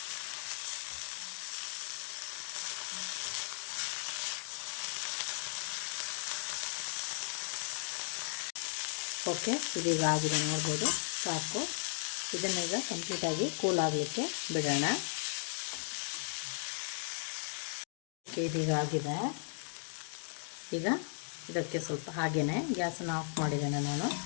ಓಕೆ, ಇದೀಗ ಆಗಿದೆ ನೋಡ್ಬೋದು, ಸಾಕು. ಇದನ್ನೀಗ ಕಂಪ್ಲೀಟಾಗಿ ಕೂಲ್ ಆಗಲಿಕ್ಕೆ ಬಿಡೋಣ. ಓಕೆ, ಇದೀಗ ಆಗಿದೆ. ಈಗ ಇದಕ್ಕೆ ಸ್ವಲ್ಪ ಹಾಗೆಯೇ ಗ್ಯಾಸನ್ನು ಆಫ್ ಮಾಡಿದ್ದೇನೆ ನಾನು.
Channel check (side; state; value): right; silent; digital silence